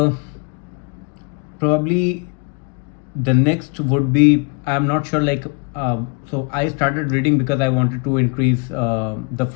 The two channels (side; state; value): right; quieter; 32.2 dB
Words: probably the next would be I'm not sure, like, so I started reading because I wanted to increase the